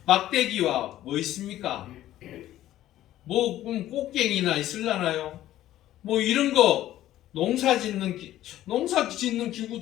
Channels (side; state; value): right; quieter; 13.6 dB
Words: 막대기와 뭐 있습니까? 뭐 꽃갱이나 있을라나요? 뭐 이런 거 농사 짓는